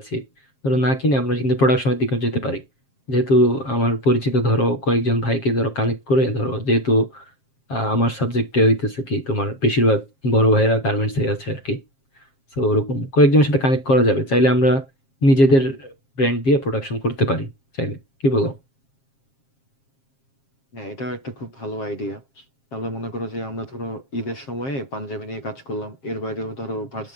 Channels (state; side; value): late; right; 7.4 ms